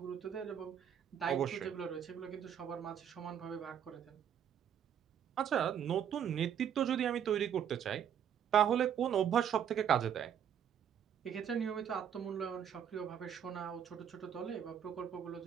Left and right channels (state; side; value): quieter; left; 8.8 dB